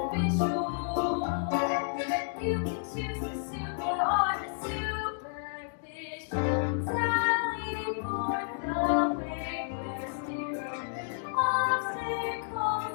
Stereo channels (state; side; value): silent; right; digital silence